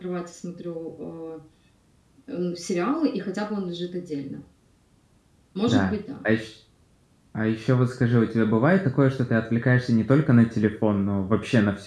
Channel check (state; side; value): identical; both; correlation 1.00